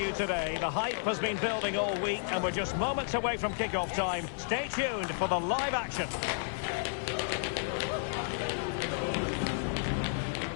today. The hype has been building all week, and we're just moments away from kickoff time. Stay tuned for the live action.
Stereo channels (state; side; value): silent; right; 56 dB below the other